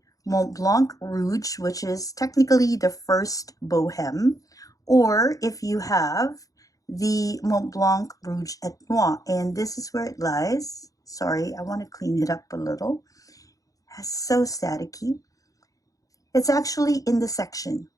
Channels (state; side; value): late; right; 0.17 ms